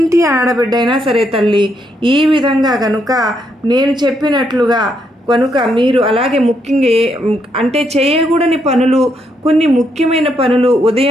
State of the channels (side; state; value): both; normal; correlation 0.76